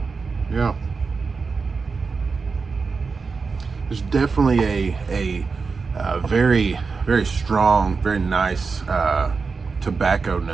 Yeah. There's definitely a very, very strong, very nice tobacco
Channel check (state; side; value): quieter; left; 4.7 dB